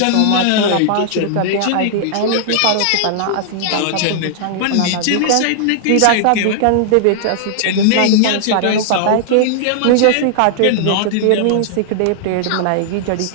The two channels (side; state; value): both; different; correlation -0.01